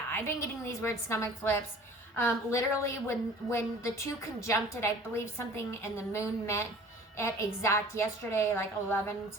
I've been getting these weird stomach flips. Literally, when the two conjuncted, I believe something and the moon met at exact yesterday, like 11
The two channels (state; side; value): normal; both; correlation 0.47